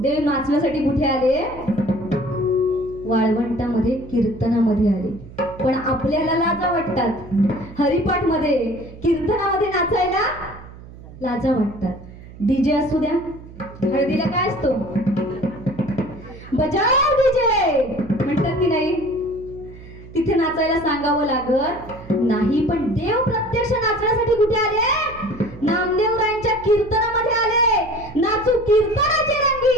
देव नाचण्यासाठी कुठे आले? वाळवंटामध्ये कीर्तनामध्ये आले. पण आपल्याला लाजा वाटतात. हरिपाठ मध्ये, कीर्तनामध्ये नाचायला लाजा वाटतात. डीजे असू द्या, हळदीला काय असतो? बजाव डीजे म्हणतात की नाही? तिथे नाचायला सांगावं लागत नाही. पण देव प्रत्यक्ष नाचण्यासाठी कुठे आले? नामदेवरायांच्या कीर्तनामध्ये आले. नाचू कीर्तनाचे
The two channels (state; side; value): noise; right; hum, 17 dB below the sound